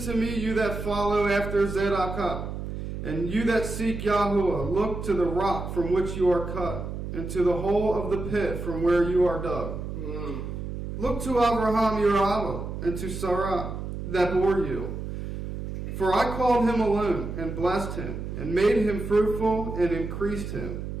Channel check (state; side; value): noise; right; hum, 6 dB below the sound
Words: me, you that follow after Zedekah, and you that seek Yahuwah. Look to the rock from which you are cut, and to the hole of the pit from where you are dug. Look to Abraham your Abba, and to Sarah that bore you. For I called him alone, and blessed him, and made him fruitful, and increased him.